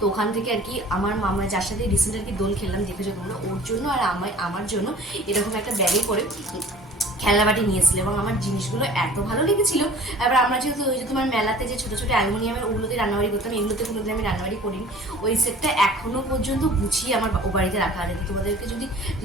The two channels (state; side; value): normal; both; correlation 0.47